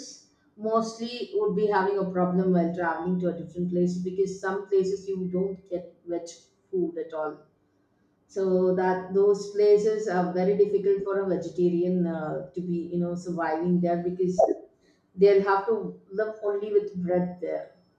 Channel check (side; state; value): both; identical; correlation 1.00